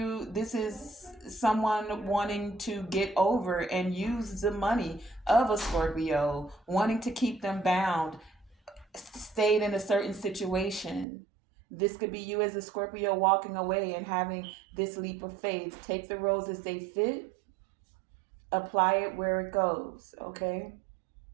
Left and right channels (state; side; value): drops out; left; at 11.1 s